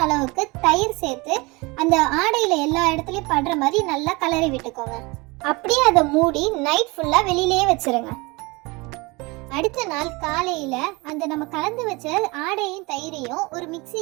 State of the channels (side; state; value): left; quieter; 25.3 dB